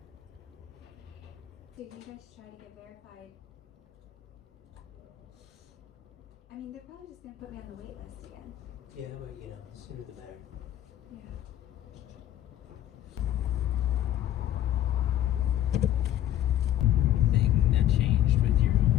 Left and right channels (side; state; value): right; quieter; 12.2 dB